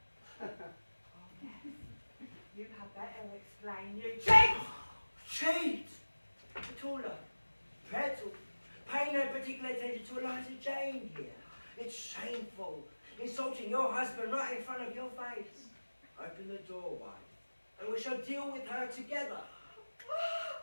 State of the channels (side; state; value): both; inverted; correlation -1.00